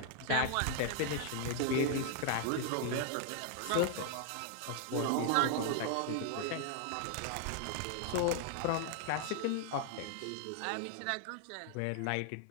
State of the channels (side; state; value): both; different; correlation 0.00